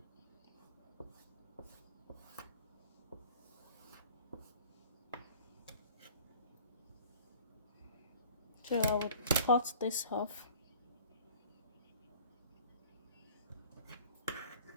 So I would cut this off.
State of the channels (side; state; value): both; inverted; correlation -0.48